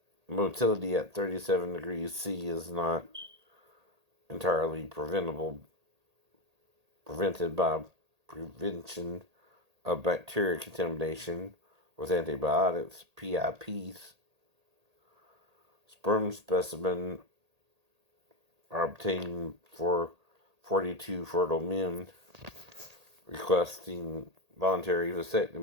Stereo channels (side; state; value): left; late; 1.8 ms